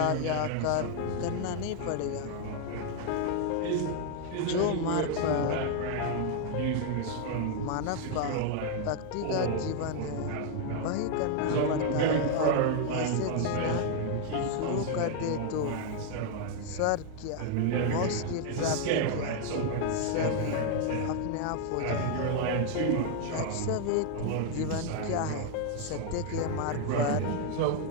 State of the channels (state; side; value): different; both; correlation 0.00